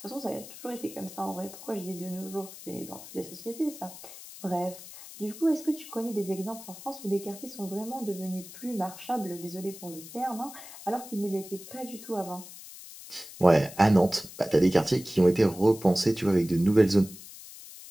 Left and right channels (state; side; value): noise; left; hiss, 15 dB below the sound